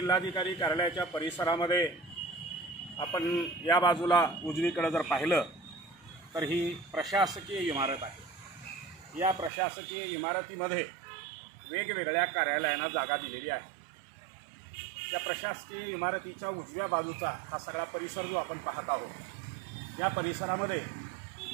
कार्यालयाच्या परिसरामध्ये आपण या बाजूला उजवीकडे जर पाहिलं तर ही प्रशासकीय इमारत आहे. या प्रशासकीय इमारतीमध्ये वेगवेगळ्या कार्यालयांना जागा दिलेली आहे. या प्रशासकीय इमारतीच्या उजव्या बाजूचा हा सगळा परिसर जो आपण पाहत आहोत, या परिसरामध्ये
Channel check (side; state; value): left; drops out; at 9.5 s